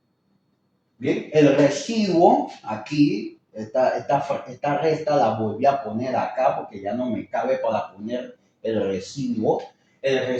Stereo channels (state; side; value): identical; both; correlation 1.00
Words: Bien, el residuo aquí, esta resta la volví a poner acá porque ya no me cabe para poner el residuo. El